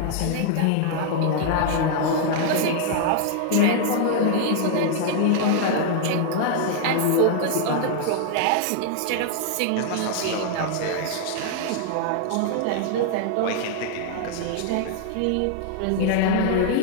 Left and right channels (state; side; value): different; both; correlation 0.00